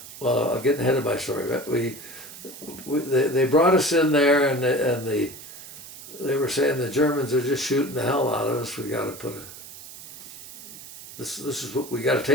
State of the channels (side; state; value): right; noise; hiss, 15 dB below the sound